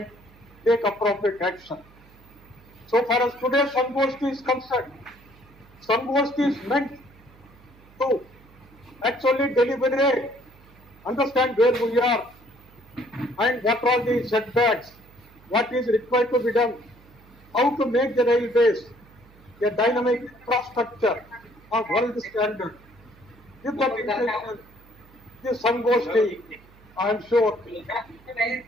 take appropriate action. So far as today's Sangosti is concerned, Sangosti is meant to actually deliberate, understand where we are and what are the setbacks, what is required to be done, how to make the railways a dynamic infrastructure of world standard. With that intention, this Sangosti, I am sure,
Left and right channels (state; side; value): noise; right; hum, 26 dB below the sound